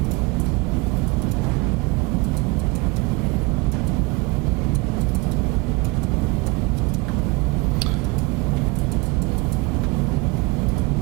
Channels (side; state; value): left; quieter; 25.1 dB